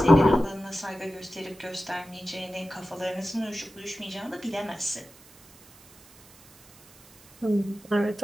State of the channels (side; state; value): right; noise; hiss, 25 dB below the sound